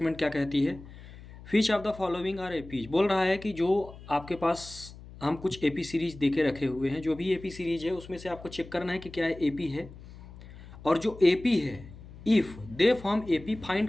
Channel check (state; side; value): noise; left; hum, 17 dB below the sound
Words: क्या कहती है। Which of the following are APs, बोल रहा है कि जो आपके पास हम कुछ एपी सीरीज देके रखे हुए हैं, जो भी एपी सीरीज है उसमें से आपको चेक करना है कि क्या है एपी है, और जो एपी है if they form AP find